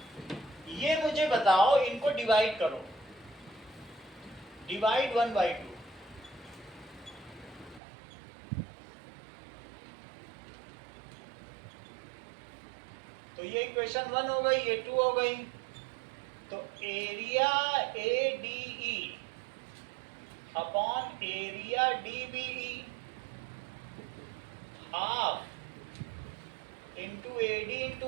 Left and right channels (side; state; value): left; drops out; at 7.8 s